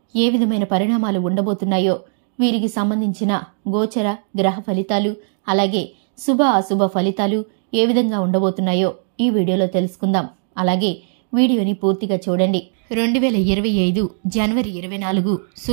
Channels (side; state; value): left; silent; 66 dB below the other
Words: ఏ విధమైన పరిణామాలు ఉండబోతున్నాయో, వీరికి సంబంధించిన గోచర గ్రహ ఫలితాలు, అలాగే శుభ అశుభ ఫలితాలు ఏ విధంగా ఉండబోతున్నాయో ఈ వీడియోలో తెలుసుకుందాం. అలాగే వీడియోని పూర్తిగా చూడండి. 2025 జనవరి 24